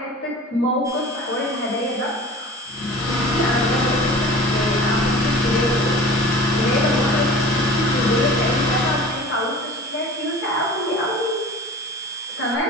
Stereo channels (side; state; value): both; normal; correlation 0.40